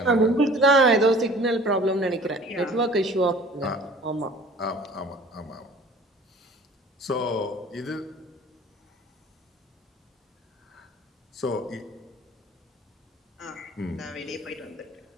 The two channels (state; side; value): normal; both; correlation 0.48